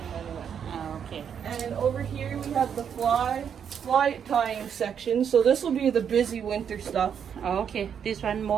Okay. And over here we have the fly tying section. So this will be the busy winter stuff. Okay. This one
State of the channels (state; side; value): quieter; left; 7.9 dB